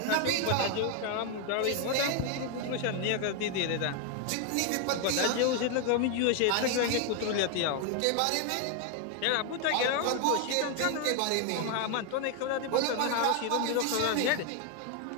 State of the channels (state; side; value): different; both; correlation 0.01